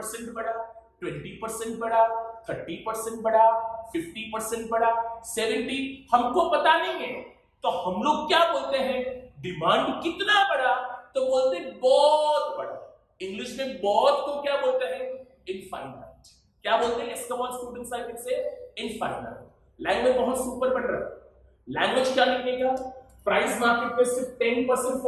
बढ़ा, 20% बढ़ा, 30% बढ़ा, 50% बढ़ा, 70, हमको पता नहीं है। तो हम लोग क्या बोलते हैं, डिमांड कितना बढ़ा, तो बोलते बहुत बढ़ा। इंग्लिश में बहुत को क्या बोलते हैं, इनफाइनाइट। क्या बोलते हैं, इसका one students I can say infinite. Language बहुत सुपर बन रहा है। लैंग्वेज क्या लिखने का, प्राइस मार्केट में सिर्फ 10%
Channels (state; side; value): identical; both; correlation 1.00